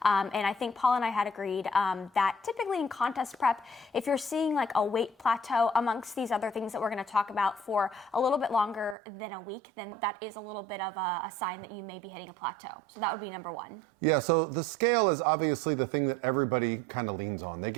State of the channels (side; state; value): left; drops out; at 9.0 s